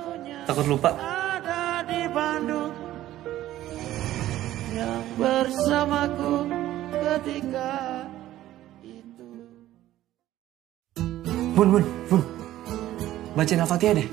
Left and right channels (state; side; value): quieter; left; 14.1 dB